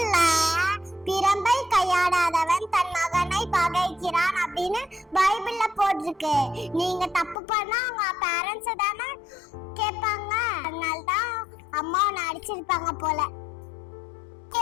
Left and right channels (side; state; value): right; drops out; at 7.4 s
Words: பிரம்பை கையாடாதவன் தன் மகனை பகைக்கிறான் அப்படின்னு பைபிள்ல போட்டிருக்கு. நீங்க தப்பு பண்ணா உங்க பேரண்ட்ஸ் தானே கேட்பாங்க. அதனாலதான் அம்மா உன்னை அடிச்சிருப்பாங்க போல.